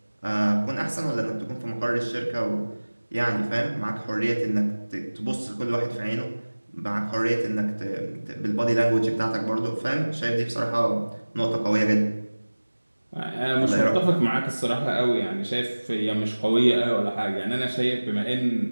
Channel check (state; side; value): inverted; both; correlation -1.00